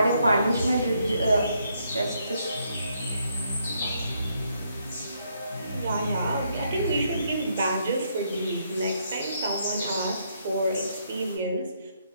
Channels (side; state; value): both; inverted; correlation -0.74